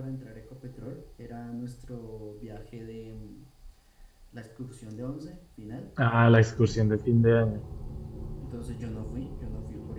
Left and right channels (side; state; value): both; identical; correlation 1.00